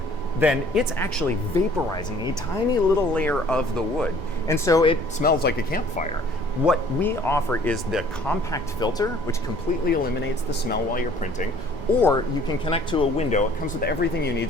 then it's actually vaporizing a tiny little layer of the wood. And so it smells like a campfire. What we offer is the compact filter, which completely eliminates the smell while you're printing, or you can connect to a window. It comes with everything you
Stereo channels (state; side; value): late; left; 1.4 ms